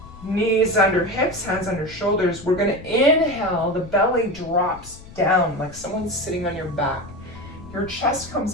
knees under hips, hands under shoulders, we're going to inhale, the belly drops down like someone's sitting on your back. Your chest comes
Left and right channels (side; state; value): left; noise; rumble, 18 dB below the sound